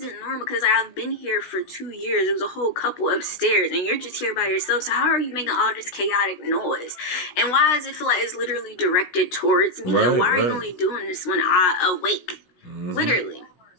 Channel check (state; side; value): late; right; 16 ms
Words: normal because I've been here for 2 years. There was a whole couple upstairs, and you're just here by yourself. So how are you making all this chaotic noise? And why does it feel like it's literally directed towards me? Right, and why are you right. only doing this when I awake? Literally.